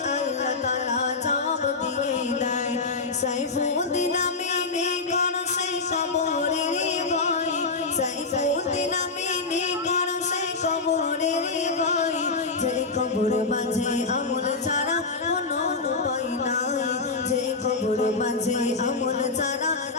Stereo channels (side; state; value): right; quieter; 4.0 dB